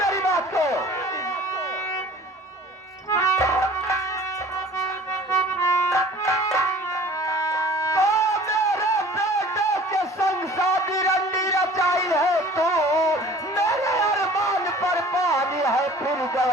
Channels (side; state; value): both; normal; correlation 0.46